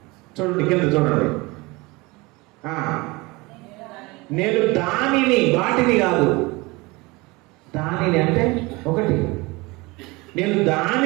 చూడండి కింద చూడండి. నేను దానిని, వాటిని కాదు, దానిని అంటే ఒకటి, నేను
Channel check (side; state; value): left; quieter; 23.9 dB